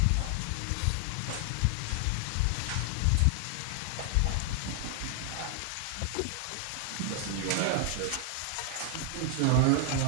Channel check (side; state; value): both; different; correlation 0.00